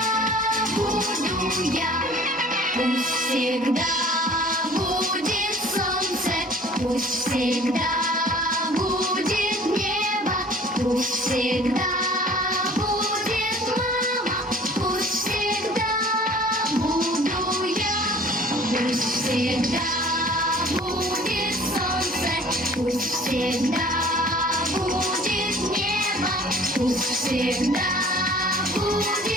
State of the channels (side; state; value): both; normal; correlation 0.49